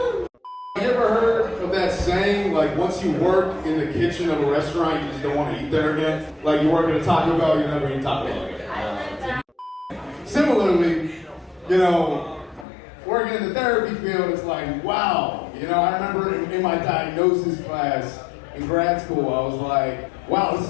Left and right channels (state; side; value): drops out; right; at 12.7 s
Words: You ever heard of that saying, like once you work in the kitchen of a restaurant, you just don't want to eat there again? Like you work at a Taco Bell, you never eat Taco Bell again. Similarly, working in the therapy field, it's like, wow. I remember in my diagnosis class in grad school, I was like, wow, this